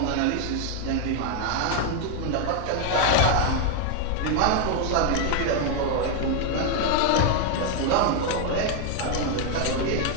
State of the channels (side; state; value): both; different; correlation 0.01